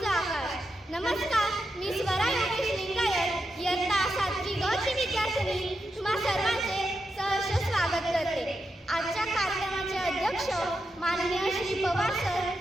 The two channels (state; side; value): normal; both; correlation 0.87